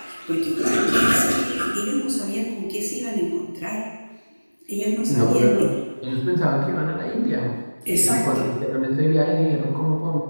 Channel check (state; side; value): inverted; both; correlation -1.00